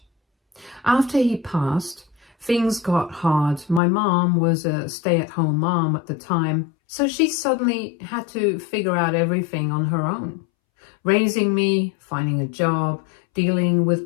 After he passed, things got hard. My mom was a stay-at-home mom at the time, so she suddenly had to figure out everything on her own. Raising me, finding a job, dealing with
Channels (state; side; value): drops out; right; at 3.8 s